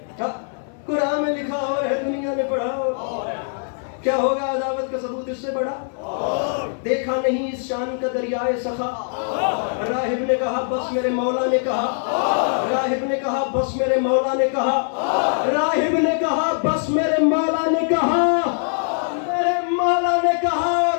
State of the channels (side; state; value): right; silent; 58 dB below the other